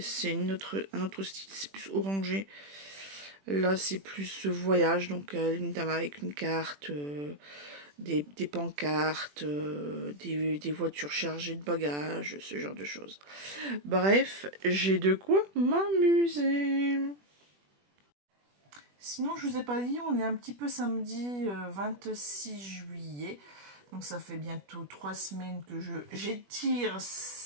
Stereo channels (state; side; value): late; left; 21 ms